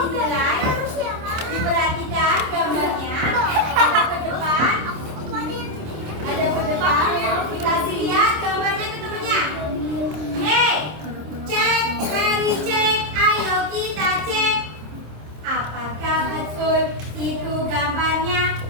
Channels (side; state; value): left; late; 26 ms